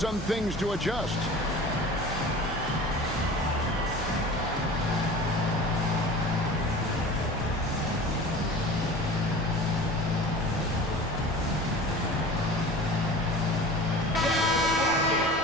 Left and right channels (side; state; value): both; normal; correlation 0.39